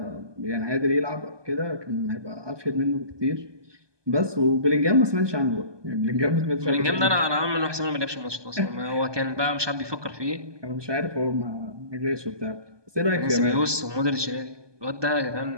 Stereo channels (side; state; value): left; late; 1.2 ms